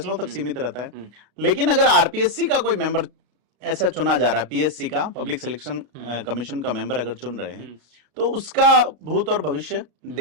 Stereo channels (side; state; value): left; late; 34 ms